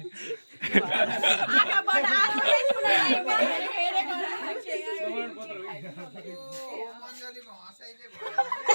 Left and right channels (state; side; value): inverted; both; correlation -1.00